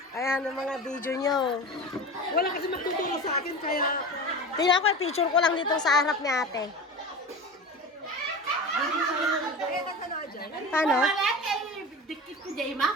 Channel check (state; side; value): normal; both; correlation 0.31